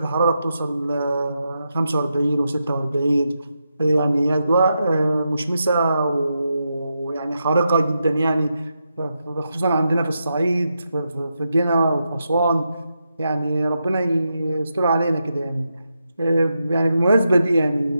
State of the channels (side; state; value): both; inverted; correlation -0.86